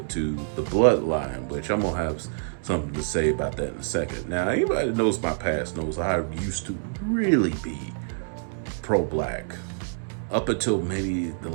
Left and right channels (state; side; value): silent; left; 61 dB below the other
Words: to the bloodline, which I'm gonna have something to say about that in a second. Now, anybody that knows my past knows I used to really be pro-black up until maybe the